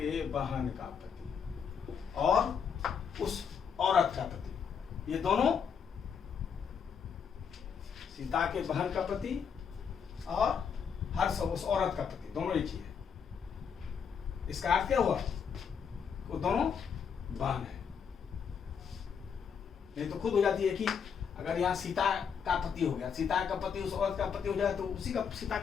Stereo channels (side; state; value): right; quieter; 6.9 dB